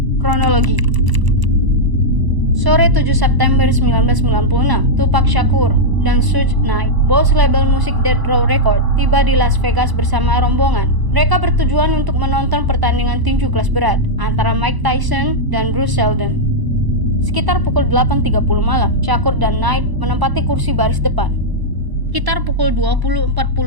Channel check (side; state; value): left; late; 1.0 ms